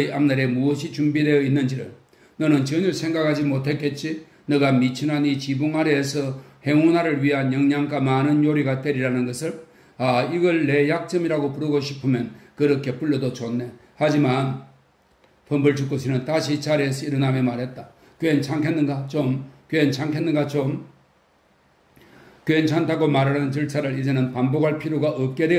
앞날에 무엇이 준비되어 있는지를. 너는 전혀 생각하지 못했겠지. 너가 미친한 이 지붕 아래에서 행운화를 위한 영양가 많은 요리가 되리라는 것을. 아, 이걸 내 약점이라고 부르고 싶으면 그렇게 불러도 좋네. 하지만 펌벌축구 씨는 다시 자리에서 일어나며 말했다. 괜찮겠는가 좀? 괜찮겠는가 좀? 괜찮다고 말하는 절차를 이제는 반복할 필요가 없게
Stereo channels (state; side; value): identical; both; correlation 1.00